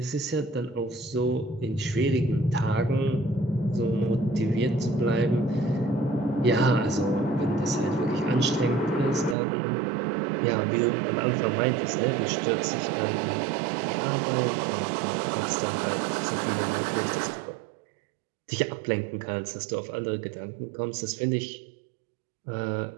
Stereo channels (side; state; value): left; drops out; at 9.3 s